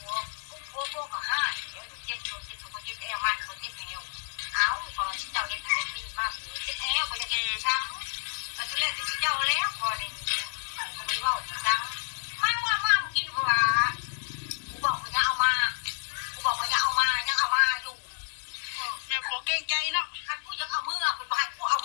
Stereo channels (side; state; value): right; silent; 58 dB below the other